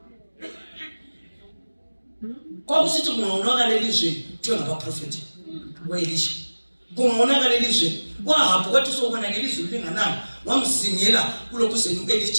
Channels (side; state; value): both; inverted; correlation -1.00